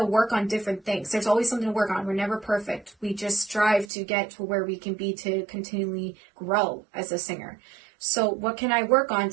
work on different things. There's always something to work on. We're never perfect. We just strive to get to where we can be to continually grow as a singer. So what can I work on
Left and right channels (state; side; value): drops out; left; at 3.9 s